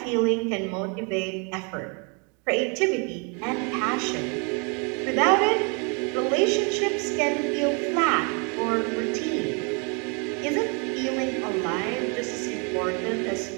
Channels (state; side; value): quieter; left; 34.4 dB